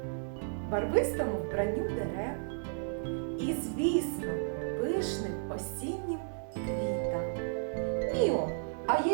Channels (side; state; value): left; silent; digital silence